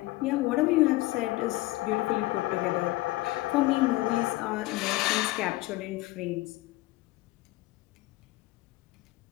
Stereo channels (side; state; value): right; quieter; 19.3 dB